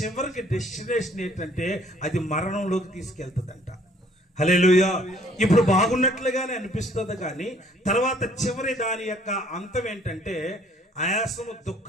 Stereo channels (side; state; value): both; normal; correlation 0.59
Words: డెస్టినేషన్ ఏంటంటే అది మరణంలోకి తీసుకెళ్తుందంట. హల్లెలూయా. ఇప్పుడు బాగున్నట్లుగానే అనిపిస్తుంది, కానీ తర్వాత చివరి దాని యొక్క అంతం ఏంటంటే ఆయాసము,